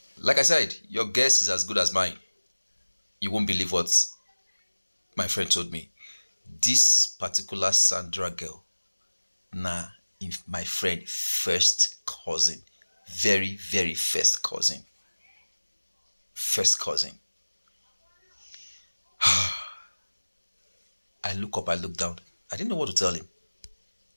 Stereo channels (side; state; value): both; inverted; correlation -1.00